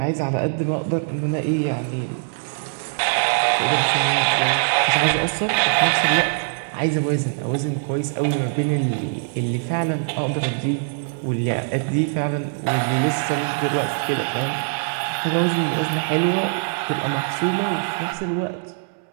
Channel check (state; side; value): silent; left; 64 dB below the other